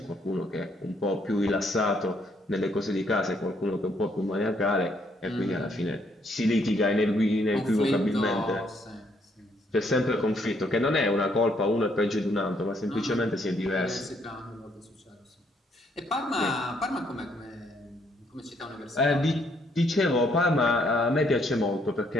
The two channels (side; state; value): both; normal; correlation 0.70